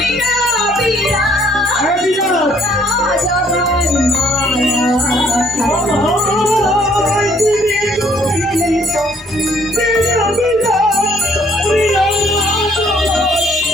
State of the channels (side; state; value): both; normal; correlation 0.63